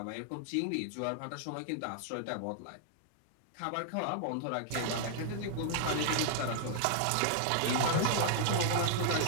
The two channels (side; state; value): both; different; correlation -0.01